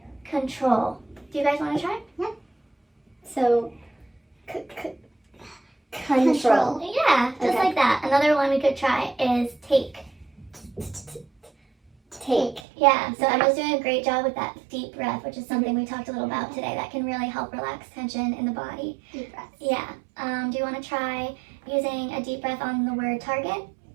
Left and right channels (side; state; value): left; drops out; at 12.6 s